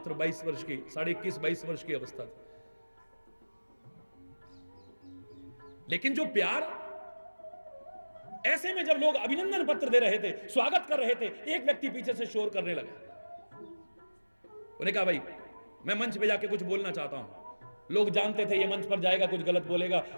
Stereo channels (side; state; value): both; inverted; correlation -1.00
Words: 22 वर्ष की, 21-22 वर्ष की अवस्था थी। लेकिन जो प्यार, ऐसे में जब लोग अभिनंदन पत्र दे रहे थे, स्वागत कर रहे थे, एक व्यक्ति पीछे से शोर करने लगा। उन्हें कहा, भाई मैं मंच पे जाके कुछ बोलना चाहता हूं। लोग जानते थे ये मंच पर जाएगा, कुछ गलत बोलेगा,